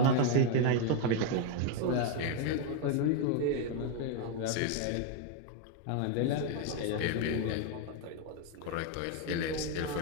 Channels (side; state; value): both; different; correlation 0.01